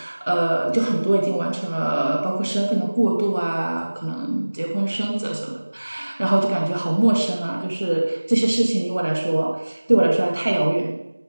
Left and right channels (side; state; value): both; inverted; correlation -1.00